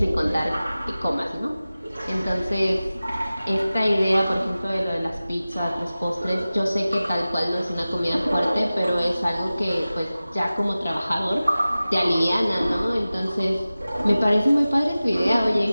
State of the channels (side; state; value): both; inverted; correlation -0.96